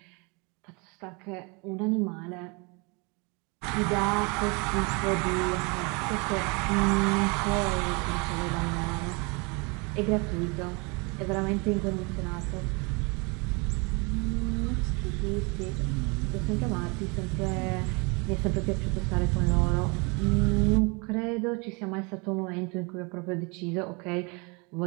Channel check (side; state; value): left; quieter; 30.1 dB